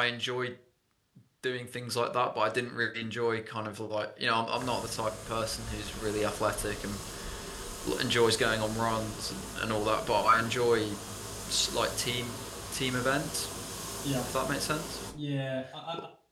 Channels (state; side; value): identical; both; correlation 1.00